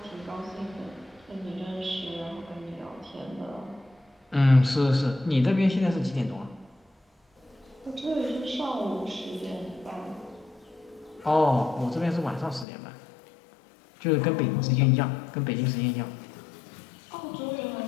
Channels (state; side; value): drops out; right; at 12.7 s